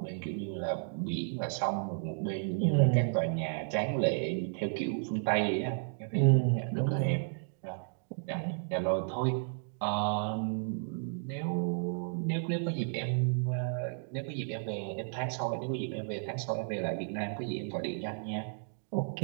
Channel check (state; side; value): silent; left; digital silence